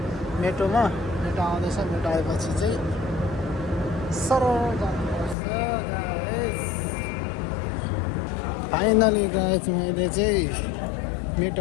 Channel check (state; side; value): drops out; right; at 5.4 s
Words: मेट्रोमा मेट्रो आउँदैछ मेट्रो आएपछि चाहिँ सरल जानुपर्छ गाइस फाइनली गाइस मैले चाहिँ